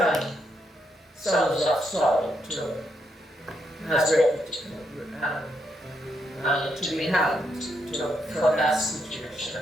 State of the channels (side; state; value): both; normal; correlation 0.79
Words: sons of Saul to be hanged for that